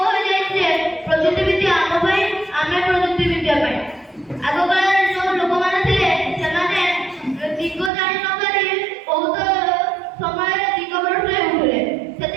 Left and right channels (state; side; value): drops out; left; at 7.9 s